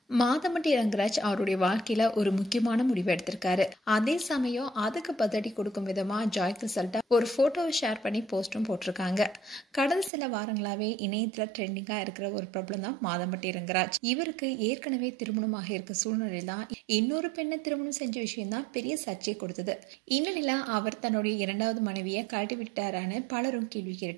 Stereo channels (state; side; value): drops out; left; at 10.1 s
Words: மாதம்பட்டி ரங்கராஜ் அவருடைய வாழ்க்கையில ஒரு முக்கியமான முடிவு எடுத்திருக்காரு. அதே சமயம் அதுக்கு பதிலடி கொடுக்கும் விதமா ஜாய் கிறிசல்டா ஒரு போட்டோவை ஷேர் பண்ணி போஸ்டும் போட்டிருக்காங்க. கடந்த சில வாரங்களாவே இணையத்துல ட்ரெண்டிங்கா இருக்கிற ஒரு பிரபலம் தான் மாதம்பட்டி ரங்கராஜ். இவருக்கு ஏற்கனவே திருமணமாக இருக்க சூழ்நிலை தான் இன்னொரு பெண்ணை திருமணம் செஞ்ச விஷயம் தான் பெரிய சர்ச்சை கொடுத்தது. இந்நிலையில அவர் தன்னுடைய இரண்டாவது மனைவியை கழட்டி விட்டாரான்னு பலரும் கேள்வி